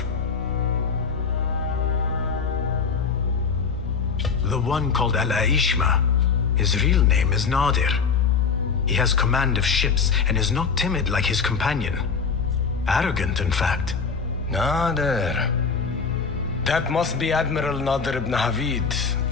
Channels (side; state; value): right; quieter; 5.5 dB